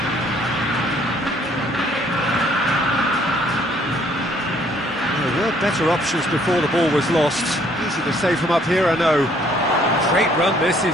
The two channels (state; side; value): normal; both; correlation 0.63